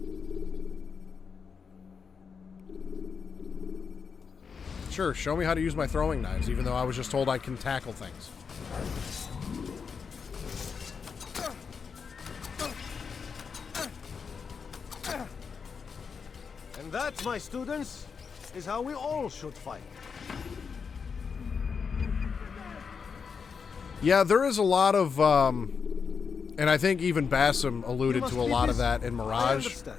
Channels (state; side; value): quieter; right; 5.9 dB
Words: Sure, show me how to use my throwing knives, even though I was just told I can tackle things. And that, my students, is how we all should fight. Yeah, there is a lot of, and I think even Bassam alluded to a lot of that in Mirage.